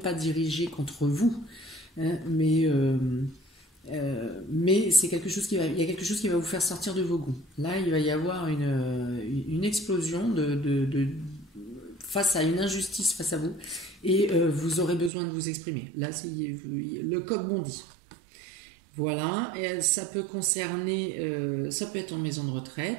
dirigée contre vous, hein, mais c'est quelque chose il y a quelque chose qui va vous faire sortir de vos gonds. Là, il va y avoir une explosion face à une injustice face à vous, et vous aurez besoin de vous exprimer. Là, le coq bondit. Voilà, et ça peut concerner, ça peut être en maison de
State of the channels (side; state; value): left; drops out; at 15.1 s